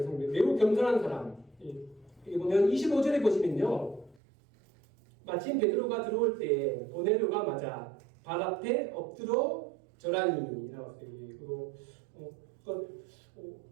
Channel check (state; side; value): drops out; left; at 4.2 s